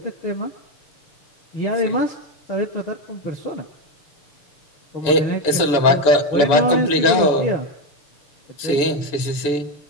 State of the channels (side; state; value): right; late; 7.0 ms